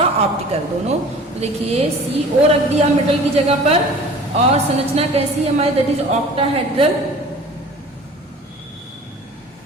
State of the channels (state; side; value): normal; both; correlation 0.44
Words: ऑप्टिकल दोनों। तो देखिए CO रख दिया मेटल की जगह पर, और संरचना कैसी है हमारी, दैट इज ऑक्टाहेड्रल,